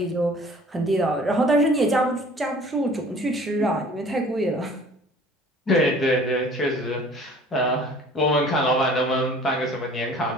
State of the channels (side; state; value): both; normal; correlation 0.50